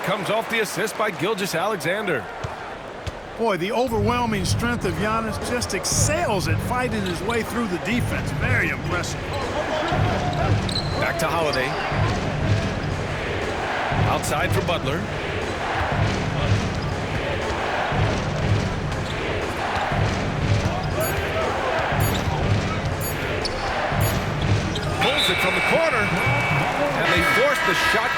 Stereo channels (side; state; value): both; identical; correlation 1.00